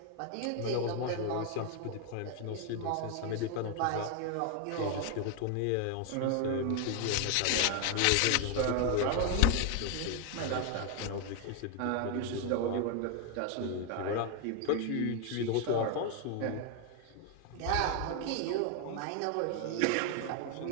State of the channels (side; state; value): both; different; correlation 0.01